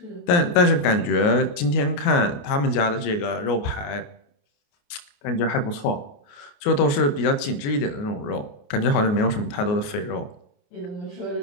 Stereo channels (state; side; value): late; right; 28 ms